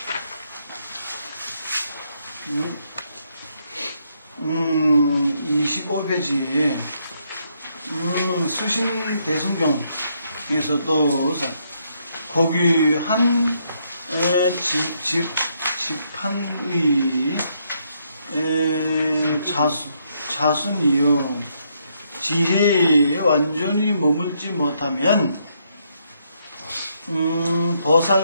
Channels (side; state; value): both; inverted; correlation -0.75